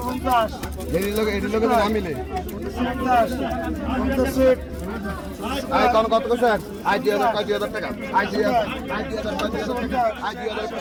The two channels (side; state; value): both; identical; correlation 1.00